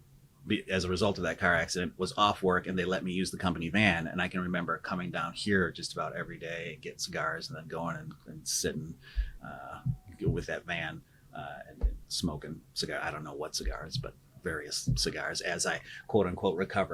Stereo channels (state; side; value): identical; both; correlation 1.00